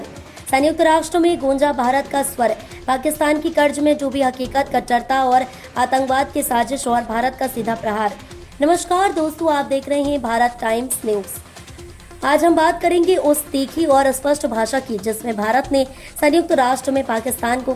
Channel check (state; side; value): identical; both; correlation 1.00